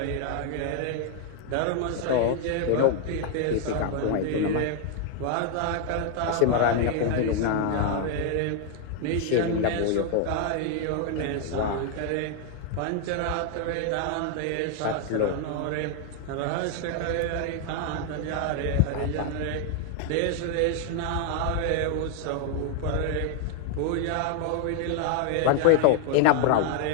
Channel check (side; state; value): both; different; correlation 0.00